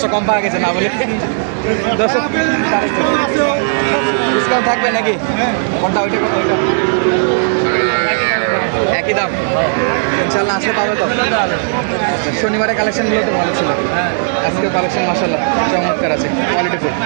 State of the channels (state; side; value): silent; left; digital silence